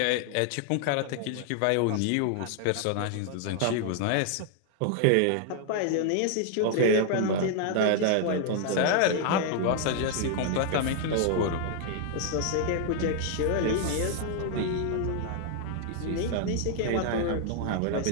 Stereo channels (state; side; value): different; both; correlation 0.00